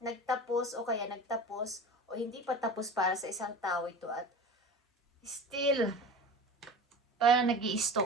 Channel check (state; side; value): normal; both; correlation 0.34